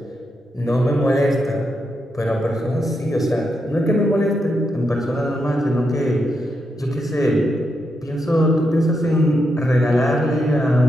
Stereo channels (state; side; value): normal; both; correlation 0.83